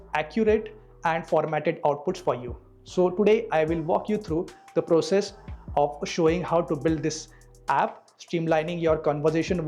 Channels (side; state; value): both; identical; correlation 1.00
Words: accurate and formatted outputs for you. So today I will walk you through the process of showing how to build this app, streamlining your conversation